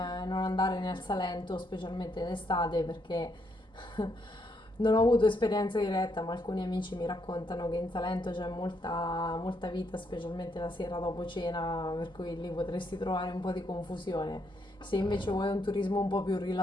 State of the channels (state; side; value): normal; both; correlation 0.76